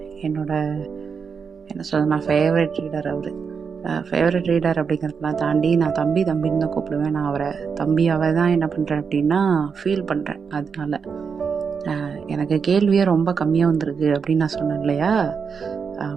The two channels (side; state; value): left; quieter; 6.0 dB